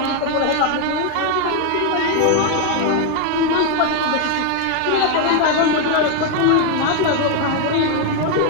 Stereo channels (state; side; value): different; both; correlation 0.01